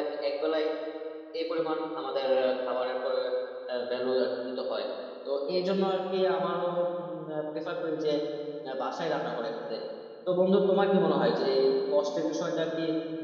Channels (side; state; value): both; identical; correlation 1.00